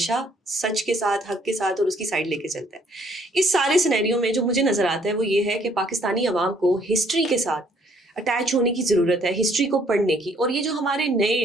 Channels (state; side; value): normal; both; correlation 0.64